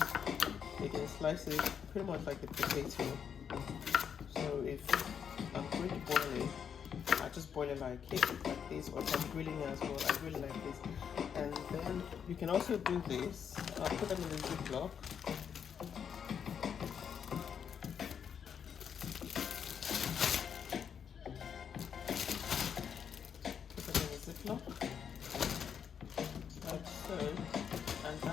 again slice it pretty much like the potato. So if I'm going to boil it, I just boil it like this, or if I'm grilling it as well, I grill it like this. And then you can also do this. I'll put them in the Ziploc. Put them in the Ziploc, like so. And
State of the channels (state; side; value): quieter; right; 7.6 dB